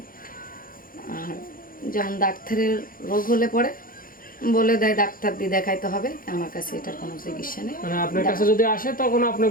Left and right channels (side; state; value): right; late; 0.41 ms